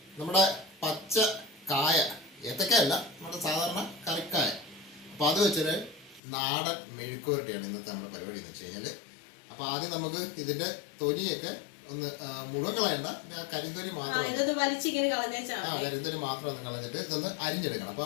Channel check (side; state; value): right; drops out; at 6.2 s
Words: നമ്മുടെ പച്ച കായ, ഏത്തക്കായല്ല, നമ്മുടെ സാധാരണ കറിക്കായ. അപ്പോൾ അത് വെച്ചൊരു നാടൻ മെഴുക്കുവരട്ടിയാണ് ഇന്നത്തെ നമ്മുടെ പരിപാടി എന്ന് വെച്ച് കഴിഞ്ഞാൽ. അപ്പോൾ ആദ്യം നമുക്ക് ഇതിൻ്റെ തൊലിയൊക്കെ ഒന്ന് മുഴുവൻ കളയണ്ട, കരിന്തൊലി മാത്രം, കരിന്തൊലി മാത്രം ഒന്ന് കളഞ്ഞിട്ട് ഇതൊന്ന് അരിഞ്ഞെടുക്കണം.